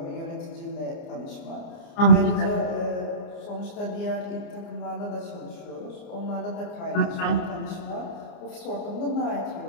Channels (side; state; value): right; late; 29 ms